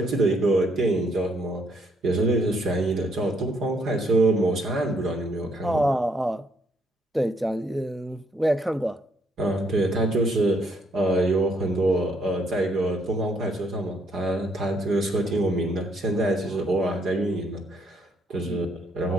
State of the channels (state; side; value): normal; both; correlation 0.70